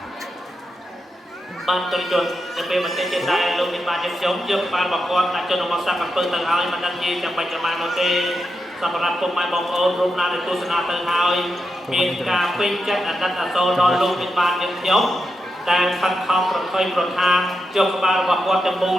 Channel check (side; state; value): both; normal; correlation 0.87